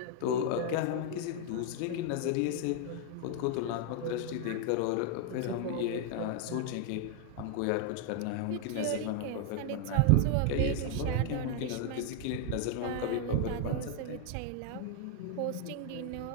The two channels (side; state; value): both; different; correlation 0.00